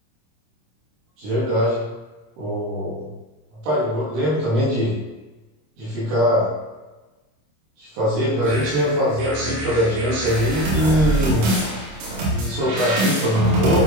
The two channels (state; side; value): late; left; 26 ms